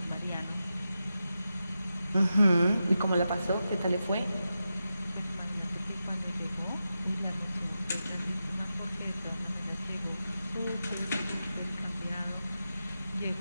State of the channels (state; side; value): inverted; both; correlation -0.90